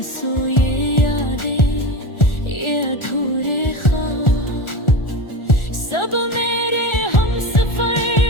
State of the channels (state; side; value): late; right; 1.4 ms